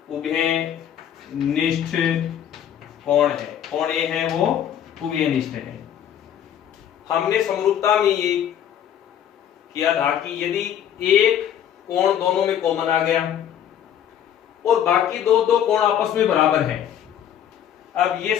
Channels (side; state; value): right; quieter; 9.8 dB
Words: उभयनिष्ठ कोण है, कोण A है वो उभयनिष्ठ है। हमने समरूपता में ये किया था कि यदि एक कोण दोनों में कॉमन आ गया और बाकी दो कोण आपस में बराबर है। अब ये